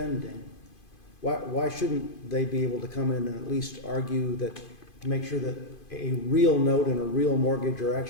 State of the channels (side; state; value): right; late; 2.5 ms